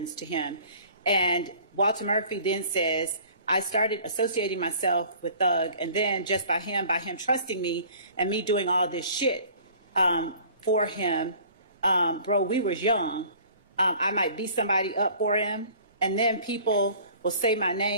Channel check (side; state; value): both; inverted; correlation -0.50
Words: to him. And Walter Murphy then says, I started associating myself with Thug, and then just by him trusting me and me doing all this shit for him, bro, we was young. I might beat somebody up for him, and then people will say my